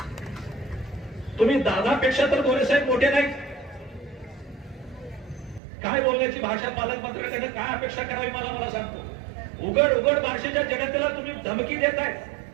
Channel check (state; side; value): drops out; left; at 5.6 s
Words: तुम्ही दादापेक्षा तर गोरेसाहेब मोठे नाही. काय बोलण्याची भाषा पालकमंत्र्यांकडे काय अपेक्षा करावी मला सांगतो. उघड उघड बार्शीच्या जनतेला तुम्ही धमकी देताय